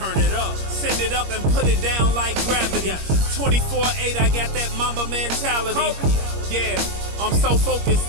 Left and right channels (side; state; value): left; late; 21 ms